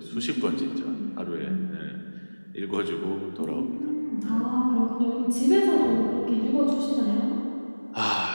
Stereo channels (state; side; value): inverted; both; correlation -1.00